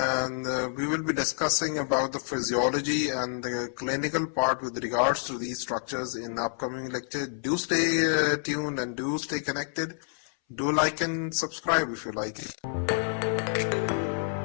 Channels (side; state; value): right; silent; 59 dB below the other